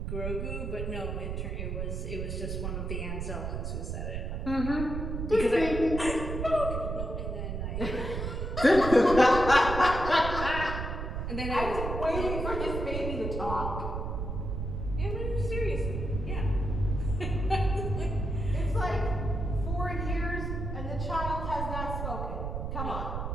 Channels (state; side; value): noise; right; rumble, 3 dB below the sound